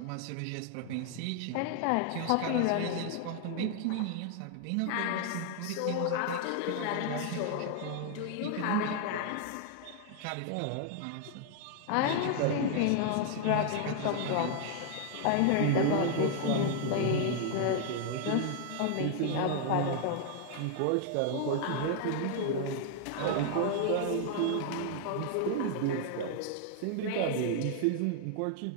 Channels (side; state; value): both; different; correlation 0.00